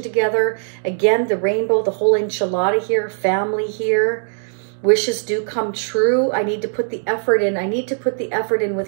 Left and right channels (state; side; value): silent; left; digital silence